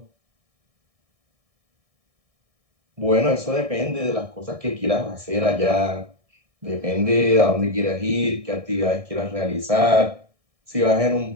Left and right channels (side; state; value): left; late; 1.6 ms